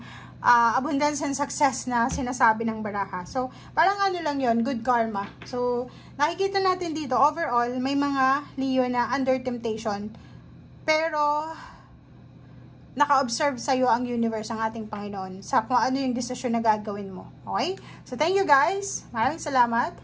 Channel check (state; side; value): identical; both; correlation 1.00